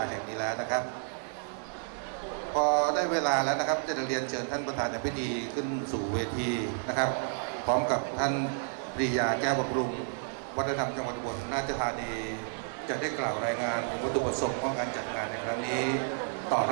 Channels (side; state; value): left; silent; 57 dB below the other